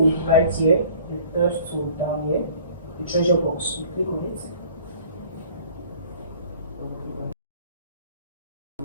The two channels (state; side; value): inverted; both; correlation -0.52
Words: right here, the third tool down here, the treasure box, you click on it.